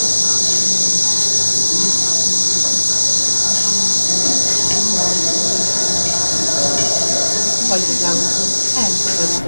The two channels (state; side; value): inverted; both; correlation -1.00